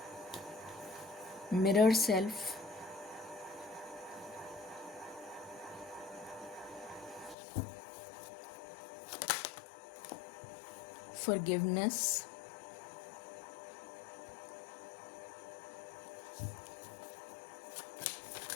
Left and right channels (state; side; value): drops out; right; at 7.4 s